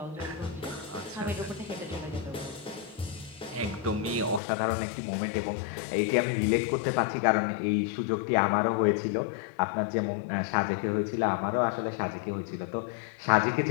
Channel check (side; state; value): right; drops out; at 4.4 s